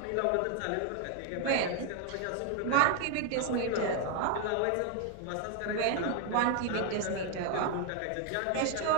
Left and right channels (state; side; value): different; both; correlation 0.00